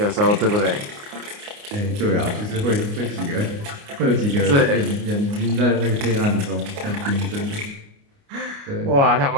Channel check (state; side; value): late; left; 29 ms